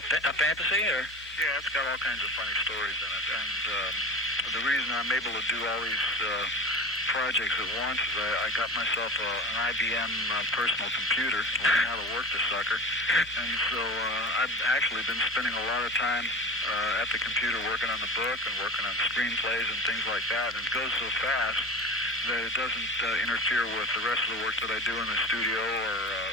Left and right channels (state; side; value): normal; both; correlation 0.33